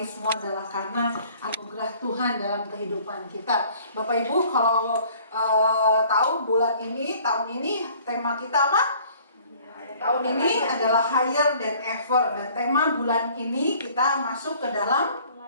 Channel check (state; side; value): inverted; both; correlation -0.54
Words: semua adalah karena anugerah Tuhan dalam kehidupan kita. Bapak Ibu kalau tahu bulan ini, tahun ini tema kita apa? Tahun ini adalah higher than ever. Dan tema bulan ini kita masuk ke dalam